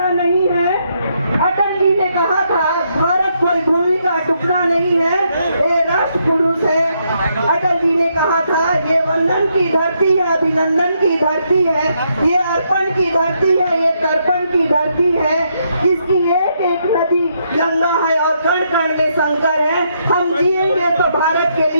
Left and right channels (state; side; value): inverted; both; correlation -0.76